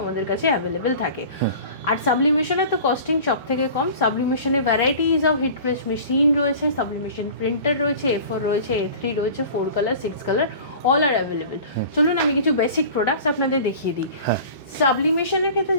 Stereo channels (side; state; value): both; inverted; correlation -0.40